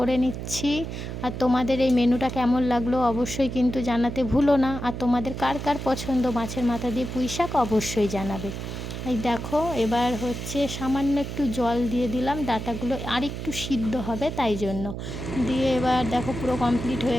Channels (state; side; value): noise; right; hum, 7 dB below the sound